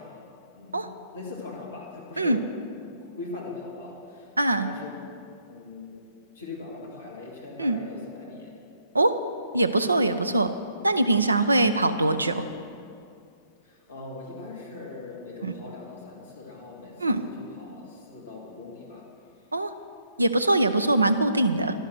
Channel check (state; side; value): inverted; both; correlation -0.73